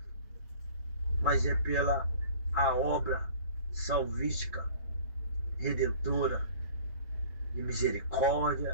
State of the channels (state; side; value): inverted; both; correlation -0.46